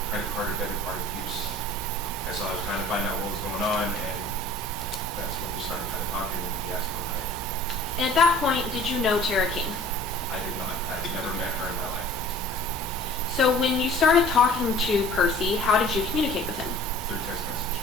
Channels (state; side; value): normal; both; correlation 0.48